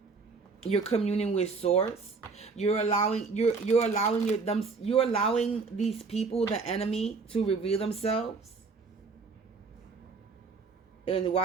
You're communing with source. You're allowing these people, the enemy, to reveal themselves. And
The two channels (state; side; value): quieter; left; 4.5 dB